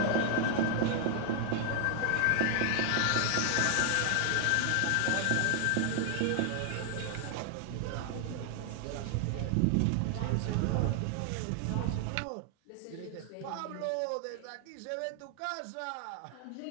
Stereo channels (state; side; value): different; both; correlation 0.00